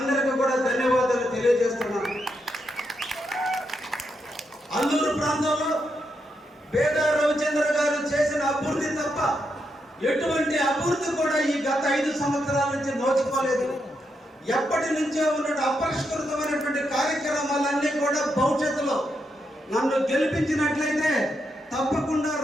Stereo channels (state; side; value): normal; both; correlation 0.82